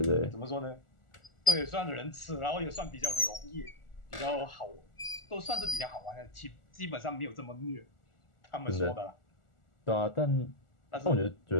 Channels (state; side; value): late; right; 1.4 ms